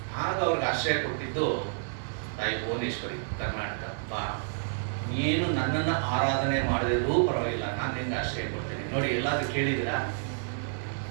ಆಗ ಅವ್ರಿಗೆ ಆಶ್ರಯ ಕೊಟ್ಟಿದ್ದು ತಾಯಿ ಭುವನೇಶ್ವರಿ, ಕರ್ನಾಟಕ. ಬಾ, ನೀನು ನನ್ನನ್ನು ಆರಾಧನೆ ಮಾಡದಿದ್ರೂ ಪರವಾಗಿಲ್ಲ, ನಾನು ನಿಂಗೆ ಆಶ್ರಯ ಕೊಡ್ತೇನೆ. ನೋಡಿ, ಎಲ್ಲಾದ್ರೂ ಕೇಳಿದಿರಾ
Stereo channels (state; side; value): silent; left; 55 dB below the other